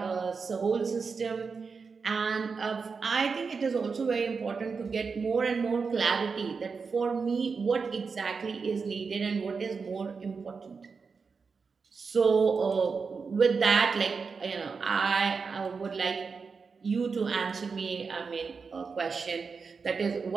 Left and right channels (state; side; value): quieter; left; 5.1 dB